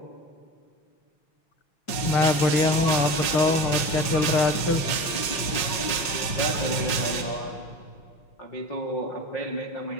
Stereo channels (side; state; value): right; late; 5.6 ms